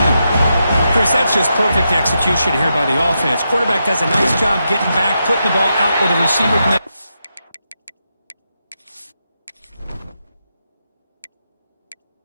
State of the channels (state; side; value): inverted; both; correlation -0.85